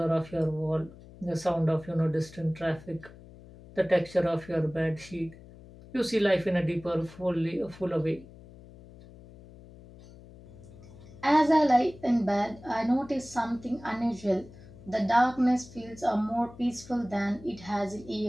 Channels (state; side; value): noise; left; hum, 20 dB below the sound